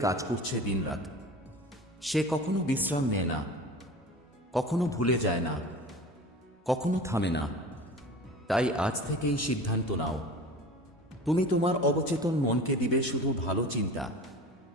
কাজ করছে দিনরাত। সে কখনো বিশ্রাম নেয় না, কখনো ভুলে যায় না, কখনো থামে না। তাই আজ থেকেই সিদ্ধান্ত নাও, তুমি তোমার অবচেতন মনকে দিবে শুধু ভালো চিন্তা,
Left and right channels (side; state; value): both; normal; correlation 0.37